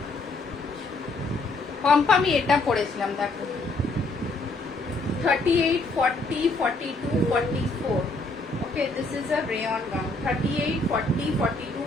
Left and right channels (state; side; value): quieter; right; 3.1 dB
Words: পম্পা আমি এটা পড়েছিলাম, দেখো 38, 40, 42, 44। Okay, this is a rayon gown, 38, 40,